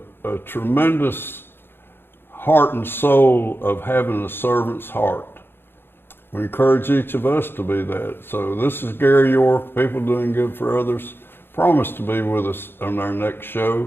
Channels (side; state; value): right; late; 0.10 ms